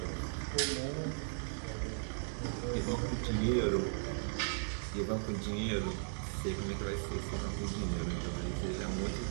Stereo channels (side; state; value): left; silent; digital silence